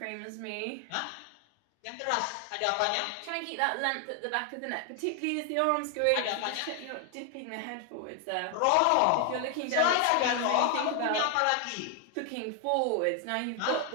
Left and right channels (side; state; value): both; different; correlation 0.00